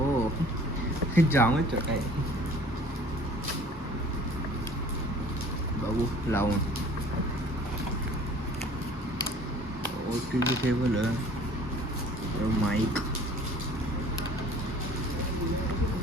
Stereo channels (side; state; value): both; normal; correlation 0.50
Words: जामच छोटा आहे. बघू लावून. OTG केबल आहे, माईक